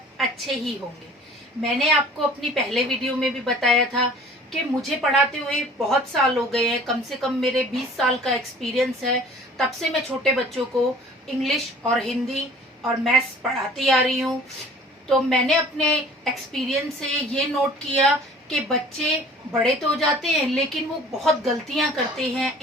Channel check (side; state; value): both; normal; correlation 0.48